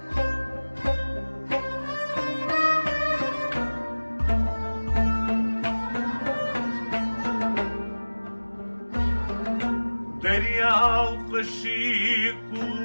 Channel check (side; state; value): both; inverted; correlation -1.00